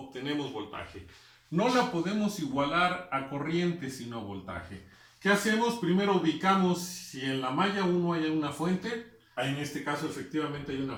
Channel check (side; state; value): both; identical; correlation 1.00